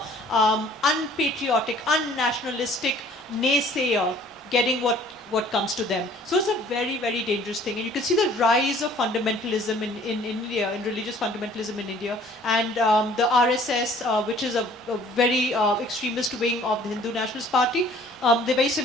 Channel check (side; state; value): both; normal; correlation 0.54